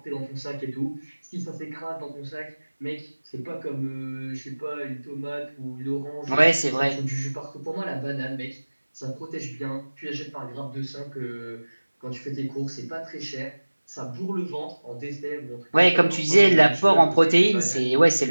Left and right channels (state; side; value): inverted; both; correlation -1.00